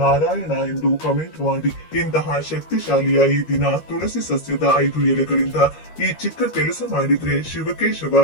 ನಾರಾಯಣ ಎಂದು ಕಮೆಂಟ್ ಮಾಡಿ. ಇಂತಹ ಶಕ್ತಿಶಾಲಿಯ ಈ ದಿನ ತುಳಸಿ ಸಸ್ಯದ 5 ಎಲೆಗಳಿಂದ ಈ ಚಿಕ್ಕ ಕೆಲಸ ಮಾಡಿದ್ರೆ ಶಿವಕೇಶವ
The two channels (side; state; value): right; late; 13 ms